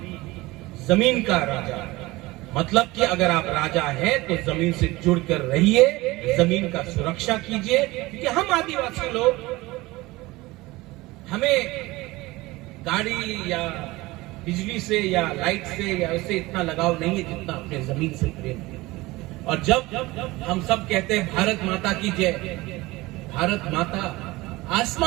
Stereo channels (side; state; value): left; quieter; 20.5 dB